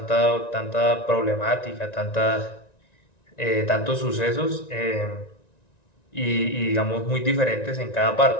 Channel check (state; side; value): late; right; 1.9 ms